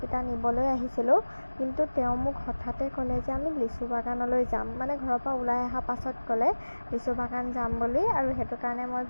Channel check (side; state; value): both; inverted; correlation -1.00